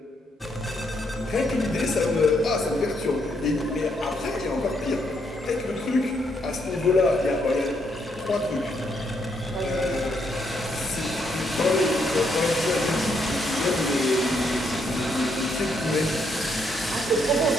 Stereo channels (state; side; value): normal; both; correlation 0.76